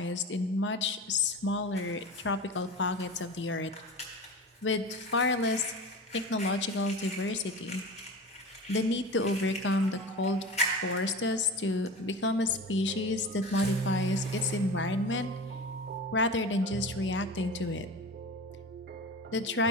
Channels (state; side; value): normal; both; correlation 0.32